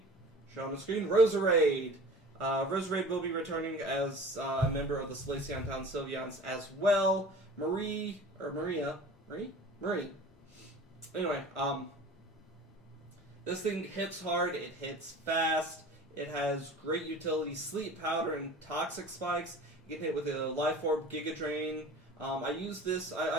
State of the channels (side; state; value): both; normal; correlation 0.41